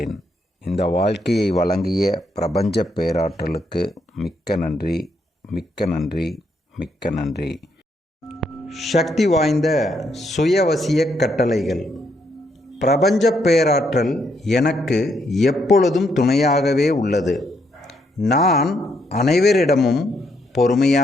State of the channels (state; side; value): normal; both; correlation 0.75